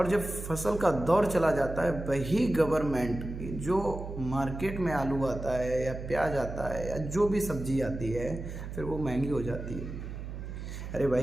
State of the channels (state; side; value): noise; right; hum, 8 dB below the sound